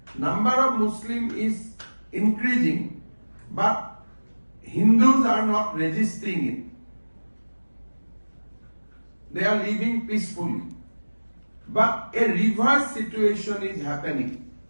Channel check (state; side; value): inverted; both; correlation -1.00